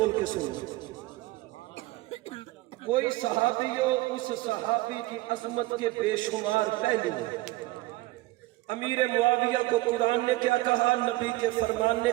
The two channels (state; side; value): quieter; left; 19.3 dB